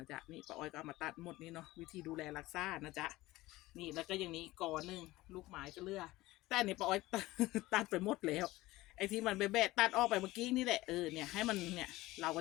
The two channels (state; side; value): quieter; right; 18.4 dB